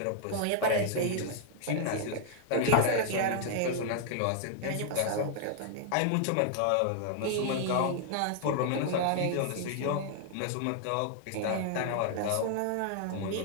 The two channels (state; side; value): different; both; correlation 0.00